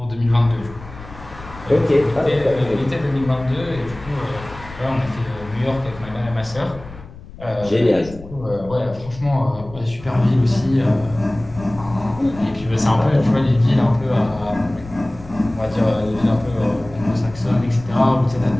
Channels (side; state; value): left; noise; rumble, 17 dB below the sound